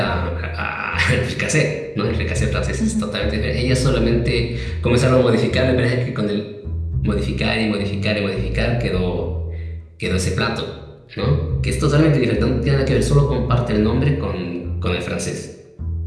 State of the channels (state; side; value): identical; both; correlation 1.00